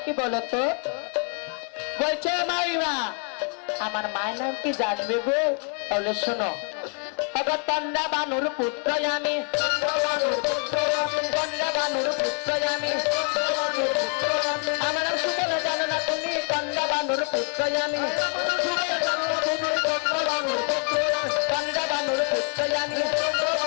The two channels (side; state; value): right; quieter; 39.6 dB